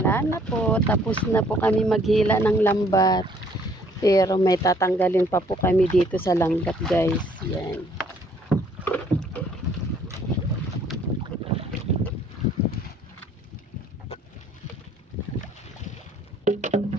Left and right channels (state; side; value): normal; both; correlation 0.61